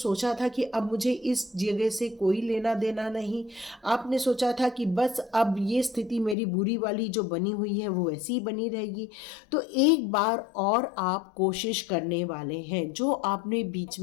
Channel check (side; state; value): right; drops out; at 6.4 s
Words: था कि अब मुझे इस जगह से कोई लेना देना नहीं, आपने सोचा था कि बस अब ये स्थिति मेरी बुरी वाली जो बनी हुई है वो ऐसी ही बनी रहेगी, तो एक बार और आप कोशिश करने वाले हैं। जो आपने बीच